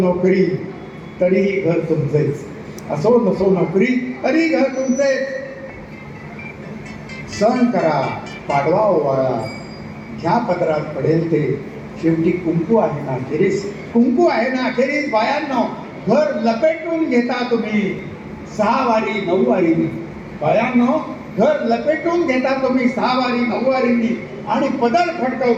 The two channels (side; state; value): both; identical; correlation 1.00